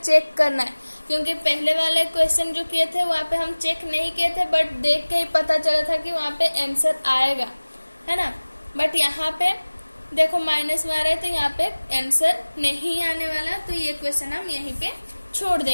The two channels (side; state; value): both; inverted; correlation -1.00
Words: करना है, क्योंकि पहले वाले क्वेश्चन जो किए थे वहाँ पे हम चेक नहीं किए थे, बट देख के ही पता चला था कि वहाँ पे आंसर आएगा, है ना। बट यहाँ पे देखो माइनस में आ रहा है तो यहाँ पे आंसर नहीं आने वाला, तो ये क्वेश्चन हम यहीं पे छोड़